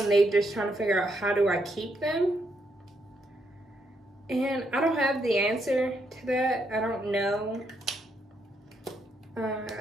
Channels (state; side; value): normal; both; correlation 0.77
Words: they just trying to figure out, how do I keep them? And I don't have the answer to that. I don't know.